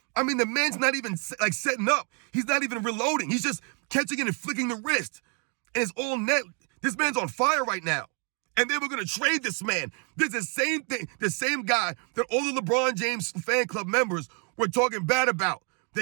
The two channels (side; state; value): left; quieter; 38.2 dB